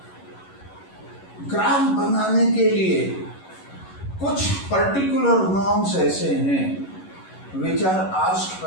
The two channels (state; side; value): late; right; 11 ms